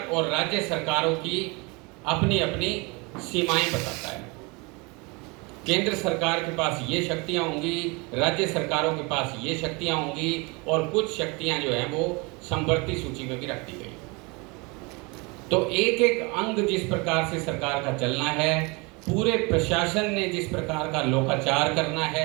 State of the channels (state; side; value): quieter; left; 28.0 dB